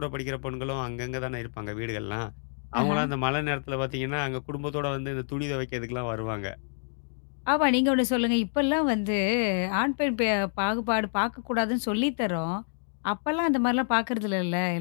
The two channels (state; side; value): silent; right; digital silence